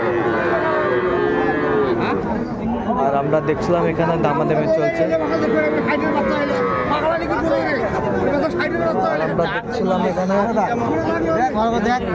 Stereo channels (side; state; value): both; identical; correlation 1.00